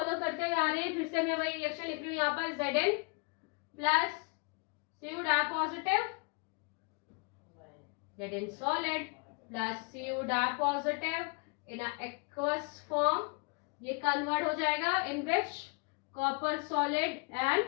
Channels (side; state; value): right; quieter; 32.2 dB